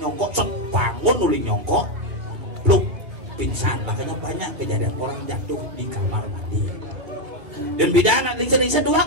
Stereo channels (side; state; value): left; late; 2.2 ms